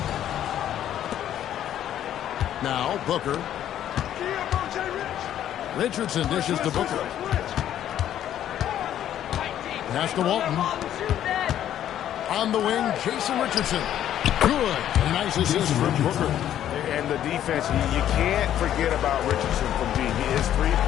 Now, Booker. Richardson dishes to Booker. Pass to Walton. On the wing, Jason Richardson. Good. A nice assist from Booker. And the defense, you can't forget about Richardson from D. His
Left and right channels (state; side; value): quieter; right; 11.1 dB